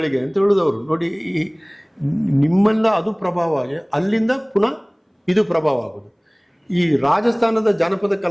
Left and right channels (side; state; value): both; identical; correlation 1.00